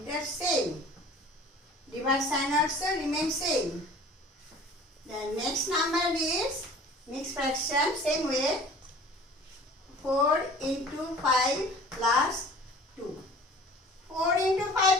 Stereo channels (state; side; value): normal; both; correlation 0.46